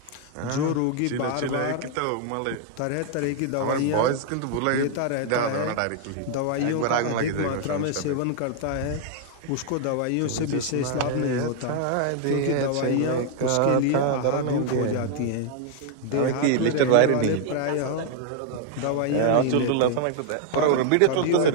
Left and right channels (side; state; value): both; different; correlation 0.00